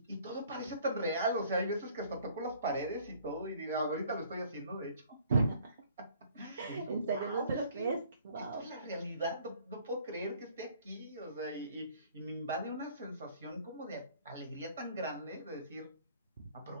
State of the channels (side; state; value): both; inverted; correlation -0.56